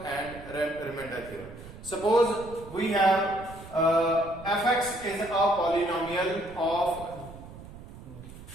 and remainder theorem. Suppose we have fx is a polynomial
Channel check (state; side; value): noise; right; rumble, 16 dB below the sound